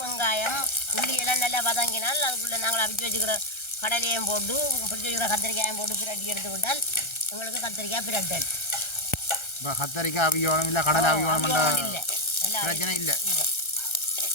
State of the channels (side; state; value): right; late; 1.3 ms